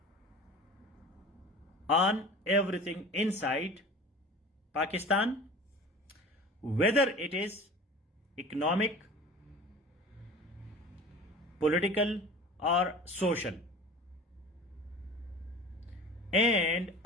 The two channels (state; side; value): normal; both; correlation 0.39